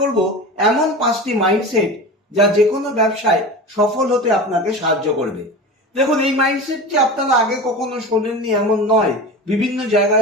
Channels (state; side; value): normal; both; correlation 0.30